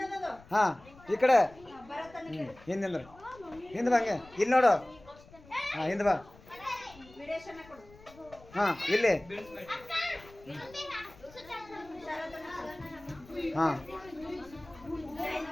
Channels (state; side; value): noise; left; rumble, 23 dB below the sound